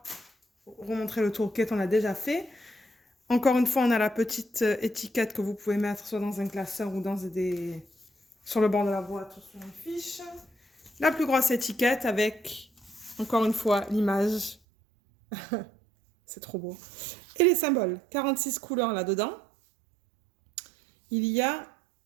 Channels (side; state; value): left; drops out; at 14.6 s